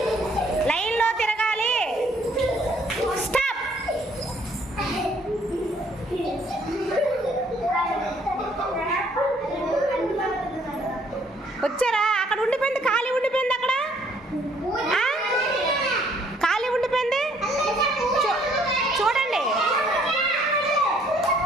లైన్లో తిరగాలి. స్టాప్. వచ్చారా? అక్కడ ఉండిపోయింది, ఖాళీ ఉండిపోయింది, అక్కడ ఖాళీ ఉండిపోయింది. చూడండి,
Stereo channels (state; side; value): normal; both; correlation 0.63